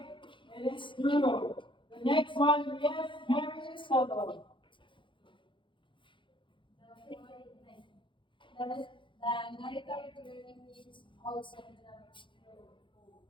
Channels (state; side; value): late; right; 0.24 ms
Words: it is true. The next one, yes, Mary Soto. The narrator learning is also